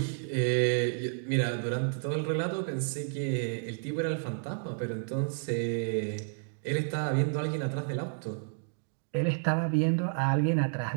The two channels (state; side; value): silent; left; digital silence